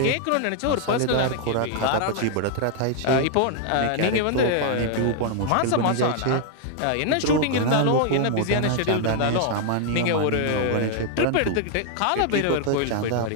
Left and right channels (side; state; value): both; different; correlation 0.00